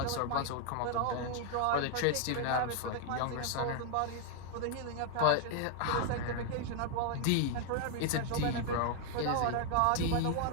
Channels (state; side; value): different; both; correlation 0.00